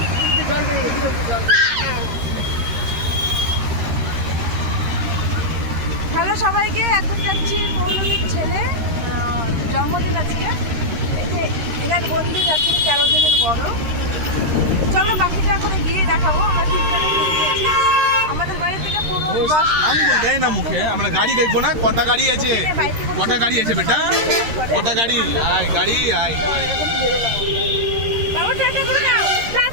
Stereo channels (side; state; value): left; late; 13 ms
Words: জল বেরিয়ে গেছে, জল। হ্যালো সবাইকে, এখন যাচ্ছি পৌলমীর ছেলে জন্মদিন আজকে। এনার বন্ধু যাচ্ছি 13 দিনের বড়। চলো বাকিটা এখন গিয়ে দেখাবো। আমরা তিনজনে আমাদের বাড়ি থেকে 15-10 আমি বলতে না মুখে, আমরা গাড়ি দেখবো না? কটা গাড়ি আছে? কটা গাড়ি আছে বেটা? কটা গাড়ি? আয় গাড়ি আয়। বাবু টাটা করে নাও।